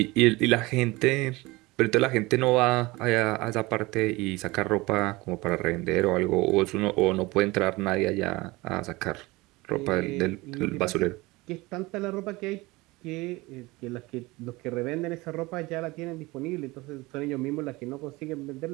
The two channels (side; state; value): left; quieter; 21.9 dB